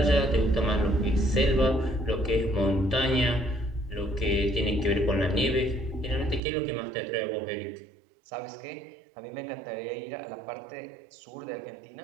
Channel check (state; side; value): drops out; left; at 6.4 s